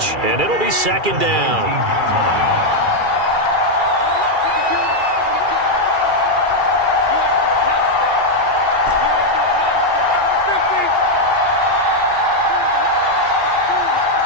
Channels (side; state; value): left; late; 2.4 ms